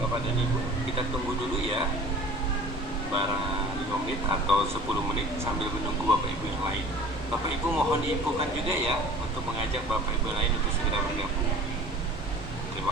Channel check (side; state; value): both; normal; correlation 0.44